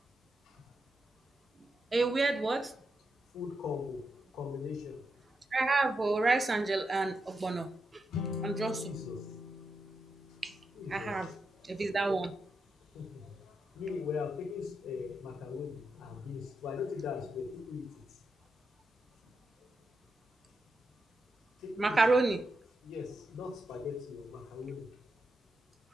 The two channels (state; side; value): normal; both; correlation 0.85